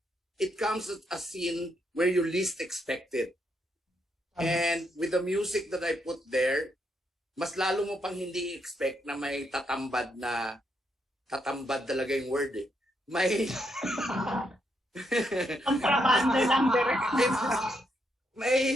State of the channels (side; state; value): both; normal; correlation 0.78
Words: it comes at a scene where you least expect it. And with the music that I put there, mas lalo mo pang hindi expect na may tatambad talaga yung word eh. May kontrabando lang direct.